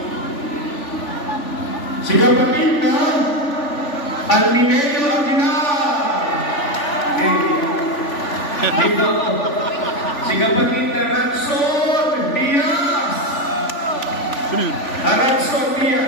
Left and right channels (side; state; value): right; late; 3.4 ms